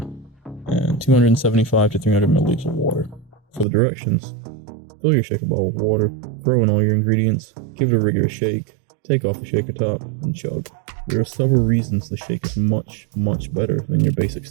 and 275 to 300 milliliters of water. For the directions, fill your shaker bottle with water, throw in all your ingredients, give it a rigorous shake, take off the shaker top, and chug. There are several reasons the shake is much better than your basic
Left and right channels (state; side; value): drops out; left; at 3.7 s